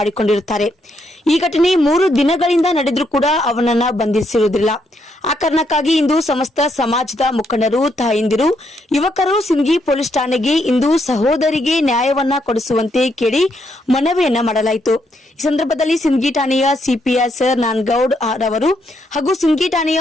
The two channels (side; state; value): both; normal; correlation 0.76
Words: ಈ ಘಟನೆ 3 ದಿನಗಳಿಂದ ನಡೆದರೂ ಕೂಡ ಅವನನ್ನ ಬಂಧಿಸಿರುವುದಿಲ್ಲ. ಆ ಕಾರಣಕ್ಕಾಗಿ ಇಂದು ಸಮಸ್ತ ಸಮಾಜದ ಮುಖಂಡರು, ತಾಯಂದಿರು, ಯುವಕರು ಸಿಂದಗಿ ಪೊಲೀಸ್ ಠಾಣೆಗೆ ಇಂದು ಸಹೋದರಿಗೆ ನ್ಯಾಯವನ್ನ ಕೊಡಿಸುವಂತೆ ಕೇಳಿ ಮನವಿಯನ್ನ ಮಾಡಲಾಯಿತು. ಈ ಸಂದರ್ಭದಲ್ಲಿ ಸಿಂದಗಿ ಠಾಣೆಯ ಸಿಪಿಎಸ್ ನಾನ್ಗೌಡ್ ಅವರು ಹಾಗೂ ಸಿಂದಗಿ ಠಾಣೆಯ